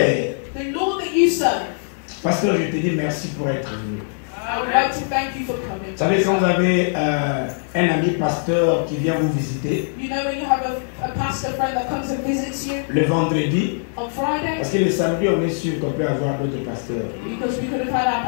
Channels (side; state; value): right; silent; 65 dB below the other